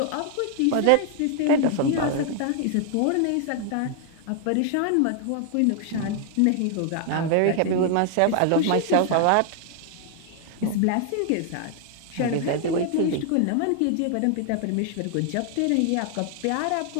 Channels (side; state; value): both; different; correlation 0.00